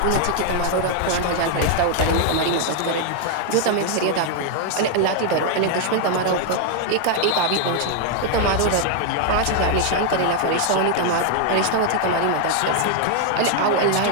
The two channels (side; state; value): both; different; correlation 0.00